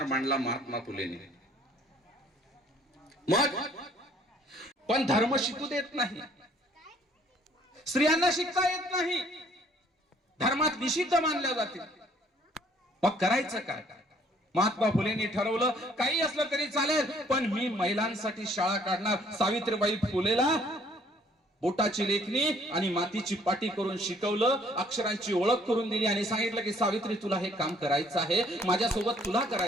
मांडला महात्मा फुलेंनी. मग पण धर्म शिकू देत नाही, स्त्रियांना शिकता येत नाही, धर्मात निषिद्ध मानल्या जाते. मग करायचं काय? महात्मा फुलेंनी ठरवलं काही असलं तरी चालेल, पण मी महिलांसाठी शाळा काढणार. सावित्रीबाई फुलेला बोटाची लेखणी आणि मातीची पाटी करून शिकवलं, अक्षरांची ओळख करून दिली आणि सांगितलं की सावित्री तुला हे काम करायचं आहे, माझ्यासोबत तुला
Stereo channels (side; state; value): both; normal; correlation 0.60